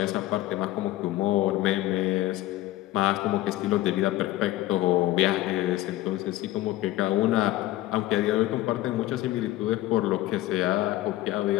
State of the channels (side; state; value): right; quieter; 15.8 dB